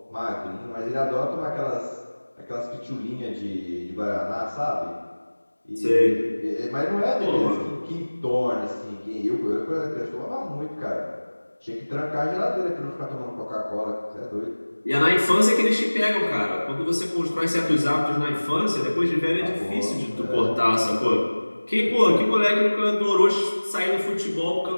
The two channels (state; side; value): inverted; both; correlation -1.00